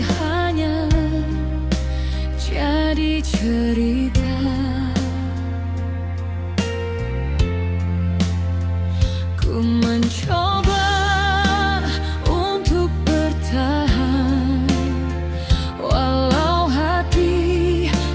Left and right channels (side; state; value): both; identical; correlation 1.00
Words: jadi cerita. Ku mencoba untuk bertahan, walau hati